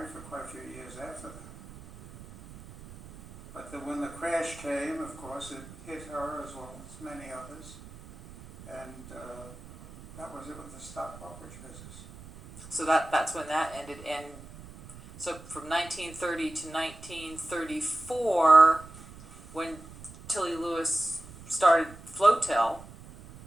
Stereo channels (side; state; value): right; noise; rumble, 17 dB below the sound